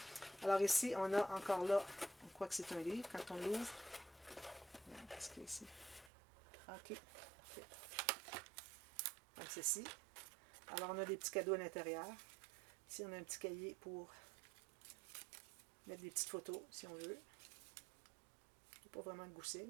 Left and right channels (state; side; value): drops out; left; at 6.1 s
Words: Alors, ici, on a encore là, on croit que c'est un livre. Quand on l'ouvre, qu'est-ce qu'il y a ici? OK. Parfait. Donc, ceci. Alors, on a des petits cadeaux à l'intérieur. Ici, on a un petit cahier pour mettre des petites photos, si on veut. Il n'y a pas vraiment de gousset,